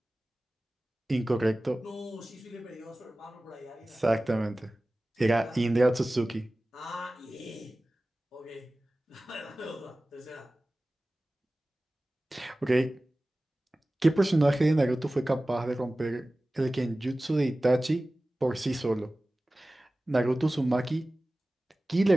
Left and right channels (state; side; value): normal; both; correlation 0.97